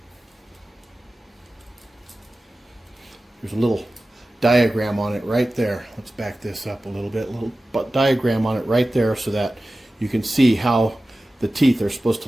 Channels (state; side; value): normal; both; correlation 0.95